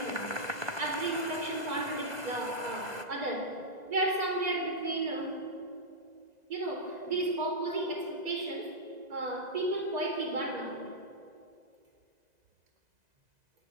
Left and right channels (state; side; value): late; left; 2.0 ms